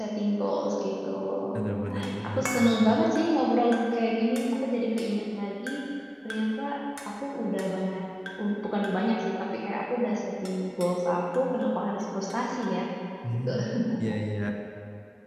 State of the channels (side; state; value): both; identical; correlation 1.00